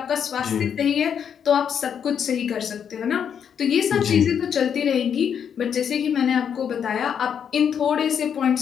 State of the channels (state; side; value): quieter; right; 7.9 dB